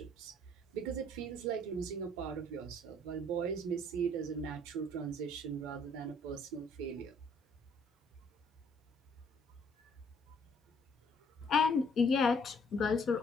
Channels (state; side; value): normal; both; correlation 0.62